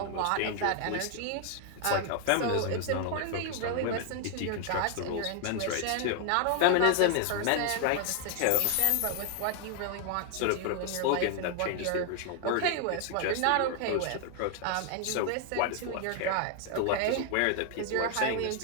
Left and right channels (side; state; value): both; different; correlation 0.00